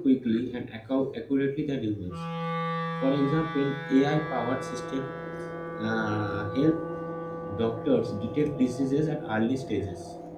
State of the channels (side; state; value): both; identical; correlation 1.00